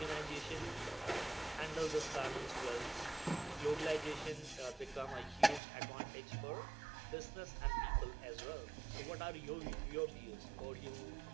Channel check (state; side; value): drops out; left; at 5.6 s